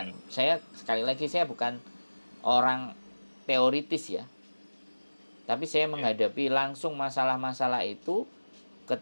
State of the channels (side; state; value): both; inverted; correlation -1.00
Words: Sekali lagi saya bukan orang teoritis ya. Tapi saya menghadapi langsung masalah-masalah itu ke